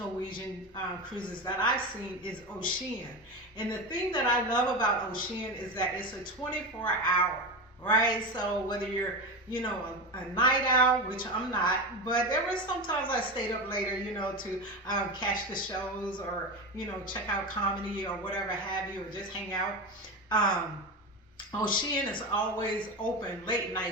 cruises that I've seen is Ocean. And the thing that I love about Ocean is that it's a 24-hour. Right, so whether you're, a night owl, which I'm not, but there were sometimes I stayed up later, to catch the shows or, check out comedy or whatever have you, or just hang out. Ocean is always open late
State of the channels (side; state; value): both; normal; correlation 0.21